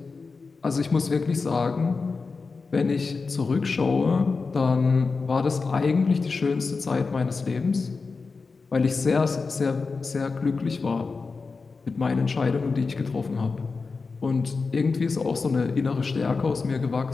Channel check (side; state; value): right; quieter; 4.4 dB